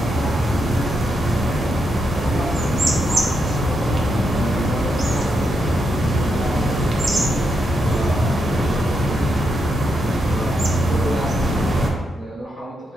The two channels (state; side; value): normal; both; correlation 0.82